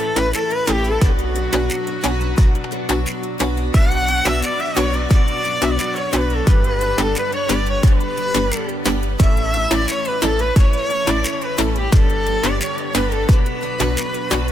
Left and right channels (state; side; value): normal; both; correlation 0.85